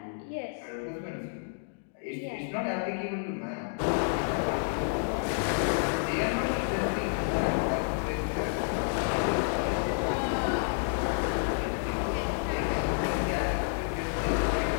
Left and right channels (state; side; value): silent; right; digital silence